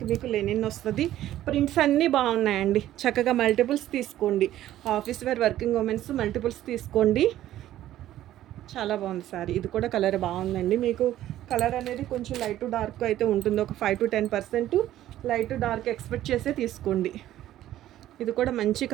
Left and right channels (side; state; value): left; quieter; 13.2 dB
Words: మీకు లెనిన్ వస్తుంది. ప్రింట్స్ అన్నీ బాగున్నాయండి. చక్కగా మల్టిపుల్స్ తీసుకోండి. Office wear working womens multiples తీసుకోండి. చాలా బాగుంది సారీ. ఇది కూడా కలర్ బాగుందండి. మీకు కలర్ అనేది కొంచెం లైట్ టు డార్క్ అయితే ఉంటుంది. ఒక 5 to 10% light to dark expect చేసే తీసుకోండి. ఇది కూడా మంచి